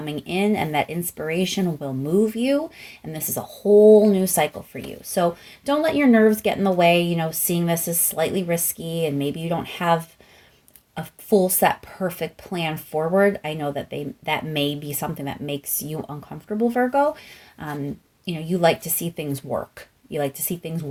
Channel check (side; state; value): both; identical; correlation 1.00